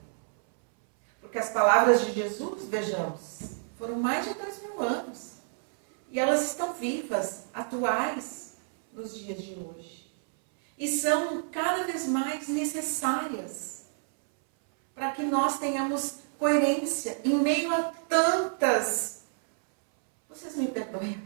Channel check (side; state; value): left; silent; 59 dB below the other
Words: Porque as palavras de Jesus, vejamos, foram mais de 2000 anos. E elas estão vivas, atuais, nos dias de hoje. E são cada vez mais necessárias para que nós tenhamos coerência em meio a tantas, vocês me perdoem a